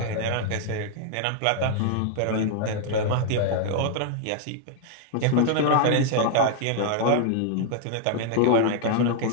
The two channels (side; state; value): both; different; correlation 0.00